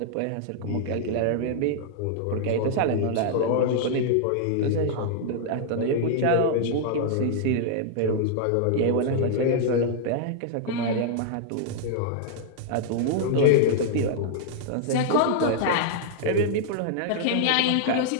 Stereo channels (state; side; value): different; both; correlation -0.01